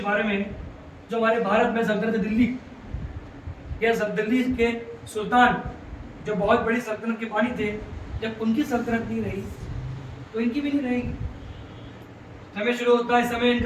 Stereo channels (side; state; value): both; identical; correlation 1.00